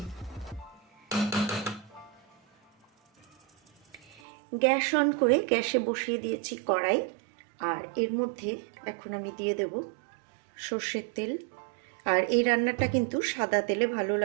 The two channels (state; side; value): drops out; left; at 4.2 s